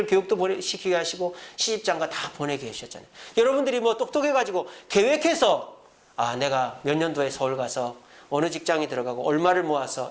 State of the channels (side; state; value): both; identical; correlation 1.00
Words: 교육도 시키게 하시고 시집장가 다 보내게 해주셨잖아요. 여러분들이 뭐 똑똑해가지고 계획해서 내가 몇 년도에 서울 가서 어느 직장에 들어가고 얼마를